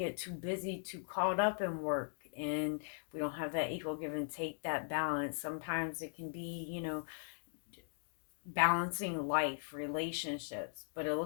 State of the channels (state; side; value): silent; right; digital silence